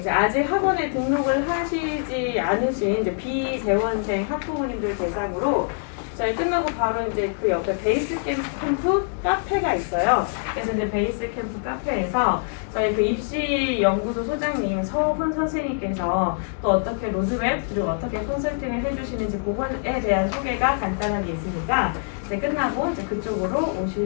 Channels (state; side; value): silent; right; digital silence